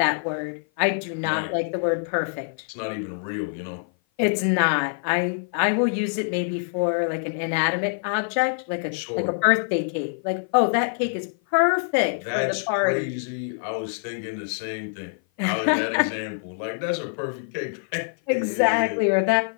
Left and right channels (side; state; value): right; silent; 56 dB below the other